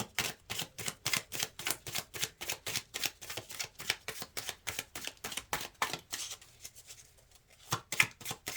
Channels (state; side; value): identical; both; correlation 1.00